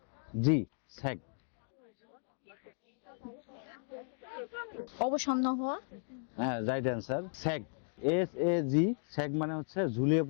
স্যাগ। অবসন্ন হওয়া হ্যাঁ, রাইট অ্যান্সার। স্যাগ, SAG, স্যাগ মানে হচ্ছে ঝুলিয়ে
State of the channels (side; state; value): right; silent; digital silence